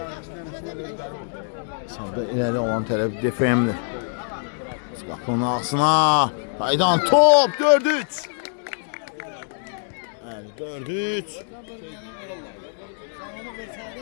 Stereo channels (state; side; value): silent; right; digital silence